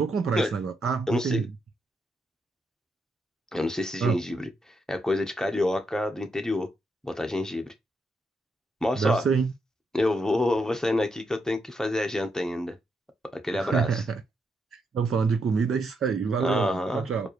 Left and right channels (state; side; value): normal; both; correlation 0.80